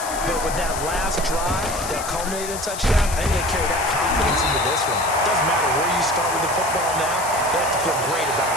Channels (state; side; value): noise; left; hiss, 9 dB below the sound